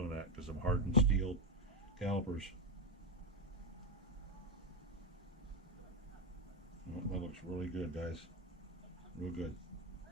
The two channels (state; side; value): normal; both; correlation 0.08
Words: that because of hardened steel calipers. Well, that looks really good, guys. Real good.